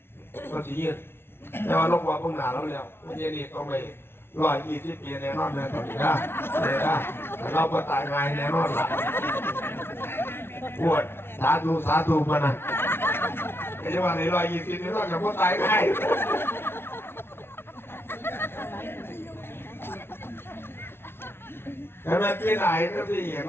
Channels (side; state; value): right; late; 0.12 ms